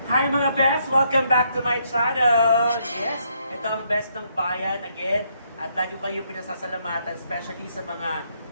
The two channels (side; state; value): both; inverted; correlation -0.73